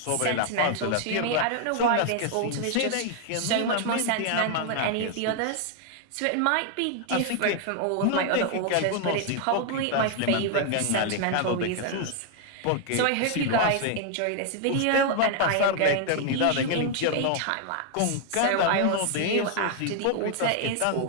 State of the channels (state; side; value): different; both; correlation 0.00